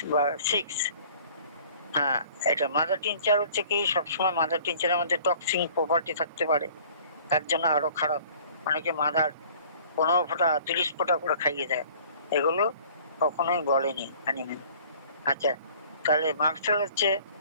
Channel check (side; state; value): both; inverted; correlation -0.52